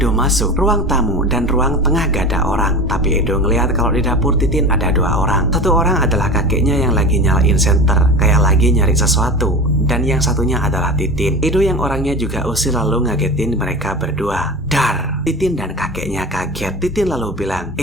masuk, ruang tamu dan ruang tengah gak ada orang, tapi Edo ngelihat kalau di dapur Titin ada 2 orang. Satu orang adalah kakeknya yang lagi nyalain senter, kayak lagi nyari sesuatu, dan yang satunya adalah Titin. Edo yang orangnya juga usil lalu ngagetin mereka berdua. Dar! Titin dan kakeknya kaget. Titin lalu bilang,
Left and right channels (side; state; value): both; normal; correlation 0.30